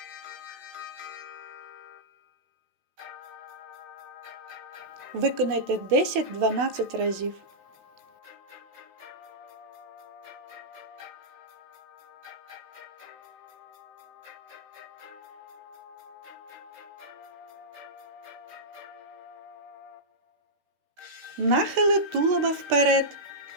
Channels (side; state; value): left; late; 16 ms